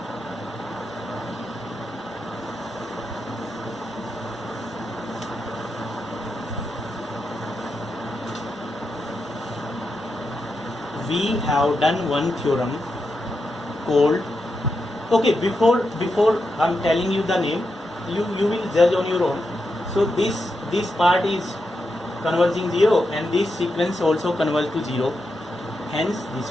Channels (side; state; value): both; normal; correlation 0.86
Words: We have done one theorem called, okay, before I'm telling you the name, you will judge on your own. So this part is converging 0, and this sequence also converge to 0, hence